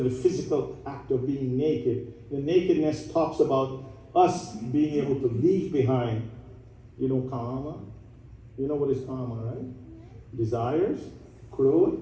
the physical act of being naked. The nakedness talks about us being able to leave behind, kama. You know what is kama, right? Desires, krodha,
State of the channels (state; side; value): identical; both; correlation 1.00